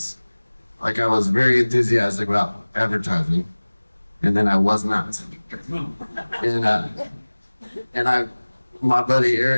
I was very enthusiastic about advertising. and then I was not. And my buddy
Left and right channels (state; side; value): inverted; both; correlation -1.00